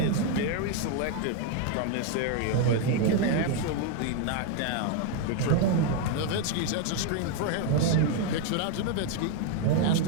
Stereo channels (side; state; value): both; different; correlation 0.01